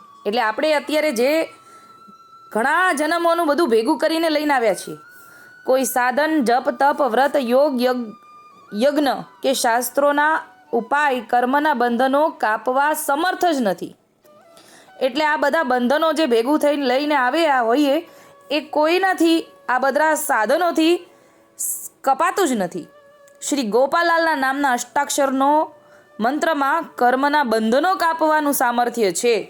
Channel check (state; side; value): identical; both; correlation 1.00